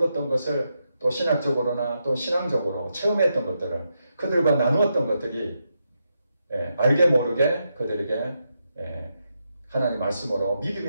것을 또 신학적으로나 또 신앙적으로 체험했던 것들을 그들과 나누었던 것들이 알게 모르게 그들에게 하나님 말씀으로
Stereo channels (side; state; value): both; inverted; correlation -0.84